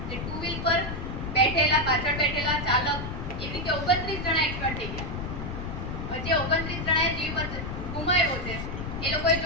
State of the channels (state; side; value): noise; left; rumble, 6 dB below the sound